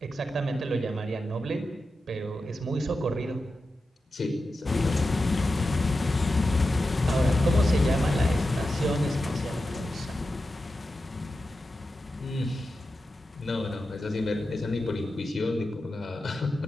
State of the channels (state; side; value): normal; both; correlation 0.91